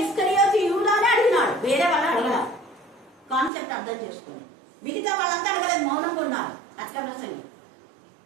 ఇస్కరియోతు యూదానే అడిగినాడు, వేరే వాళ్ళు అడగల. కాన్సెప్ట్ అర్థం చేసుకోండి. మిగతా వాళ్ళంతా అడగలేదు, మౌనంగా ఉన్నారు. అత్క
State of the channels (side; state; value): left; drops out; at 3.5 s